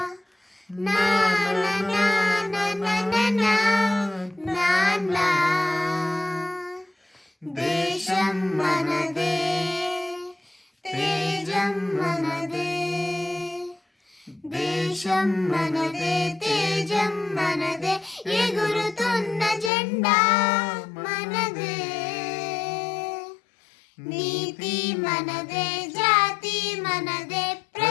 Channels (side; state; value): right; drops out; at 19.7 s